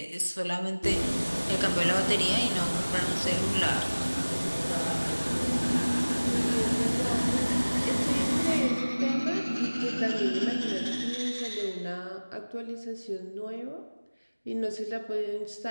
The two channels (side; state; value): both; inverted; correlation -1.00